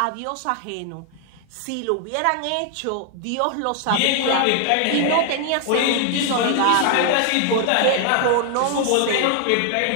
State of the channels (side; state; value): both; different; correlation 0.00